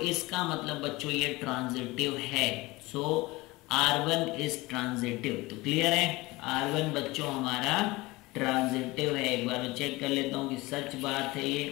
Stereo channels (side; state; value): right; quieter; 21.4 dB